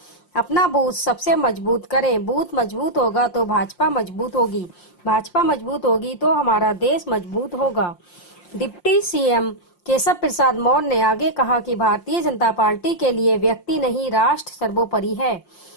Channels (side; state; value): right; late; 5.7 ms